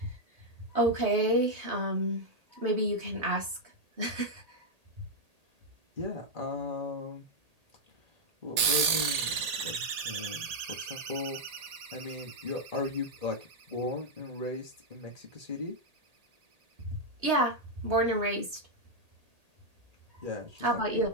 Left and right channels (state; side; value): late; left; 1.8 ms